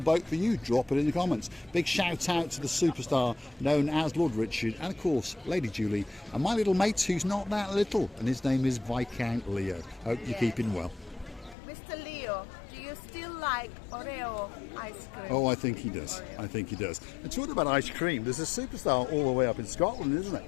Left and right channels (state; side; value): drops out; right; at 11.6 s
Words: for you. Drop it in the comments. Big shout out to the superstar known as Lord Richard, and of course Lady Julie, and my little mate who's not that little, and his name is Viscount Leo. Hope you're keeping well. Mr. Leo, do you still like Oreo ice cream? Oh, I think he does. I think he does. And talking about ice cream, there's a superstar all the way up in Scotland, isn't it?